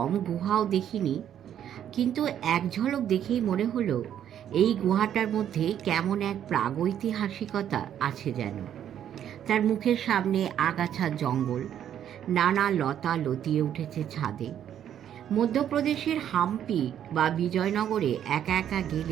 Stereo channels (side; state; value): left; quieter; 10.0 dB